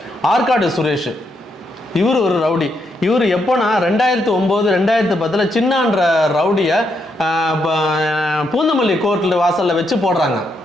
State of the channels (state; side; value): normal; both; correlation 0.79